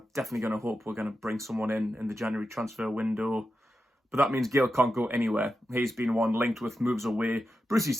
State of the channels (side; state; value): both; normal; correlation 0.90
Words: definitely going to hope we're going to bring someone in the January transfer window. But that means Gale can't go anywhere. He's been one linked with moves away. Brucey